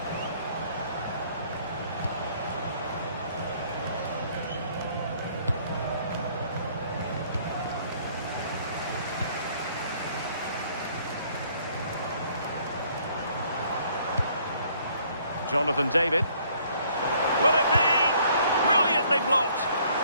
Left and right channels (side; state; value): both; inverted; correlation -0.62